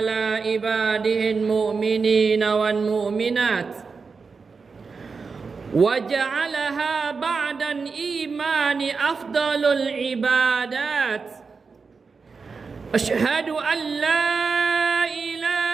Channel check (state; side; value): quieter; left; 4.9 dB